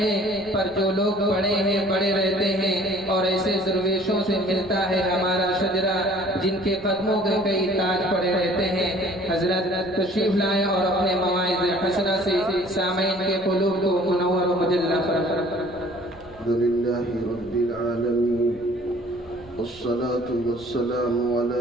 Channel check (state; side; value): noise; right; rumble, 22 dB below the sound